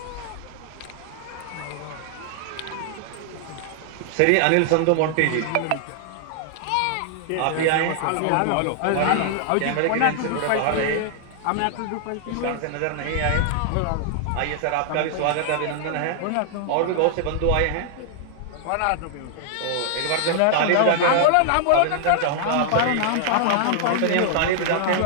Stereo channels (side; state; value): both; different; correlation -0.01